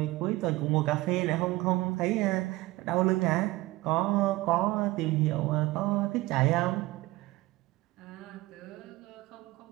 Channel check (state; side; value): quieter; left; 19.7 dB